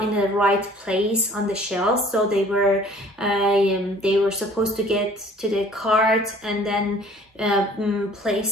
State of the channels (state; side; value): normal; both; correlation 0.52